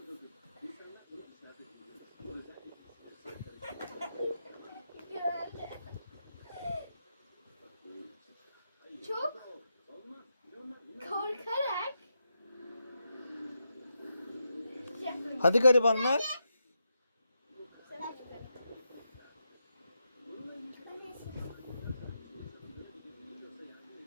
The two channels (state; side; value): inverted; both; correlation -0.85